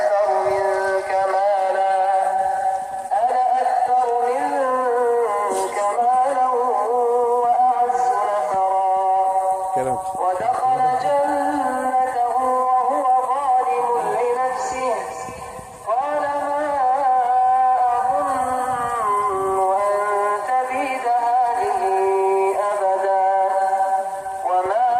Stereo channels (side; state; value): both; identical; correlation 1.00